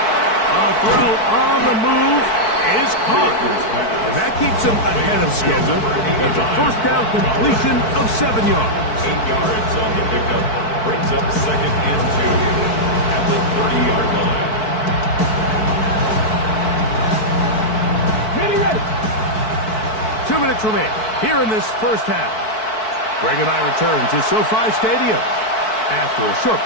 A throw on the move is caught. And that keeps him ahead of schedule. That's a first down completion of 7 yards. 8 yards on the pickup. Brings up second and 2 at the 30-yard line. Ready. 2 minutes remain here in this first half. Greg and I return to SoFi Stadium after a short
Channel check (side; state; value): right; late; 4.6 ms